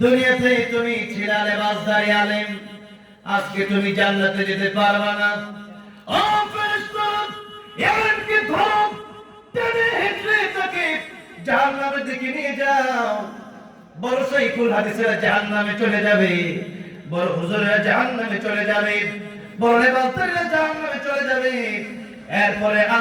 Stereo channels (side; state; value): both; identical; correlation 1.00